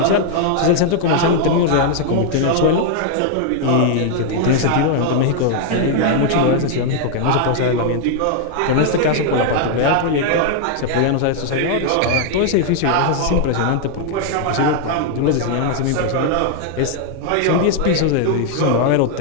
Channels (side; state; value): both; different; correlation 0.00